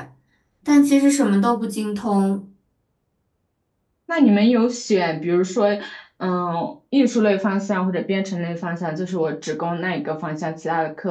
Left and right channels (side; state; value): both; identical; correlation 1.00